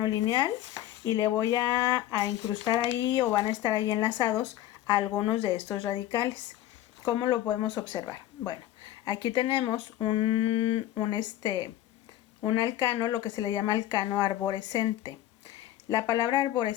lineal y le voy a incrustar ahí o van a estar ahí enlazados a algunos de estos radicales. ¿Cómo lo podemos observar? Bueno, aquí tenemos un alcano, lo que se le llama alcano arborescente. La palabra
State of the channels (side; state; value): right; quieter; 13.4 dB